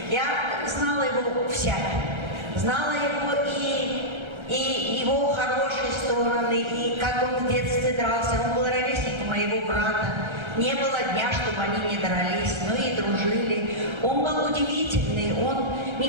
Я знала его всяким. Знала его и его хорошие стороны, и как он в детстве дрался. Он был ровесник моего брата. Не было дня, чтобы они не дрались, но и дружили. Он был удивительный, он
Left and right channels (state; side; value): late; left; 1.3 ms